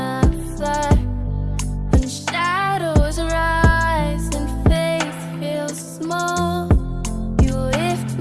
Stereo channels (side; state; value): both; identical; correlation 1.00